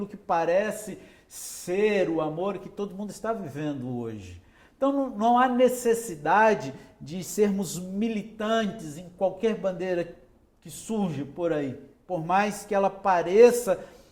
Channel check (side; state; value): both; identical; correlation 1.00